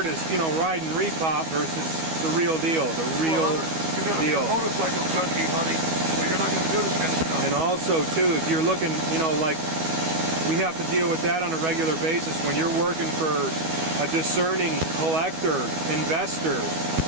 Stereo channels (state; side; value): late; left; 12 ms